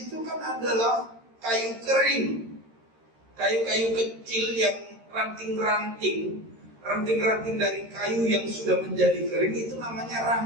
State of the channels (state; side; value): late; left; 13 ms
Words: kan adalah kayu kering. Kayu-kayu kecil yang ranting-ranting dari kayu yang sudah menjadi kering itu namanya